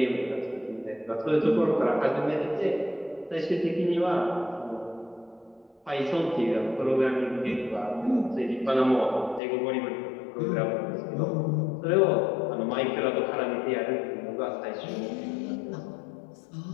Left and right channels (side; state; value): right; drops out; at 9.4 s